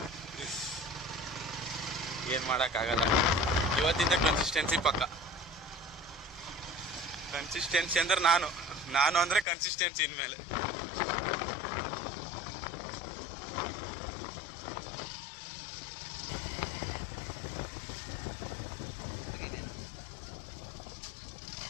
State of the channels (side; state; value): right; drops out; at 9.5 s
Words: ಏನು ಮಾಡೋಕ್ಕಾಗಲ್ಲ. ಇವತ್ತಿಂದ ಕನ್ಸಿಸ್ಟೆನ್ಸಿ ಪಕ್ಕ. ಕನ್ಸಿಸ್ಟೆನ್ಸಿ ಅಂದ್ರೆ ನಾನು ಅಂದರೆ ಕನ್ಸಿಸ್ಟೆನ್ಸಿ ಇನ್ಮೇಲೆ.